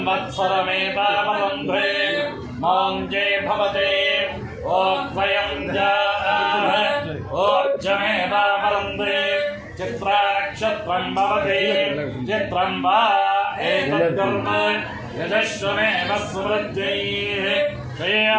मौञ्जे भवते ओद्वयं ओज्जमेवावरुन्धे चित्रानक्षत्रं भवते चित्रं वा एतद्कर्म यजस्वमेव सुवृद्ध्यैः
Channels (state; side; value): identical; both; correlation 1.00